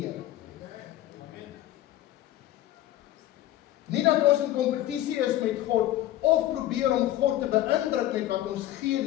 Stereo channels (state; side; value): quieter; right; 13.9 dB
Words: Nie dat ons in kompetisie is met God of probeer om God te beïndruk met wat ons gee